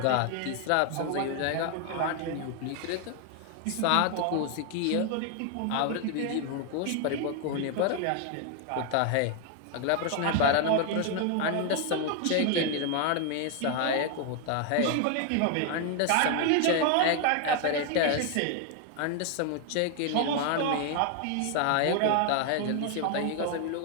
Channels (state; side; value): different; both; correlation 0.00